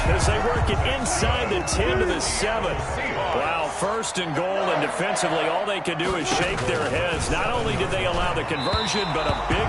as they work it inside the 10 to the 7. Wow, 1st and goal, and defensively all they can do is shake their heads. Not only did they allow the conversion, but a big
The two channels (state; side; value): identical; both; correlation 1.00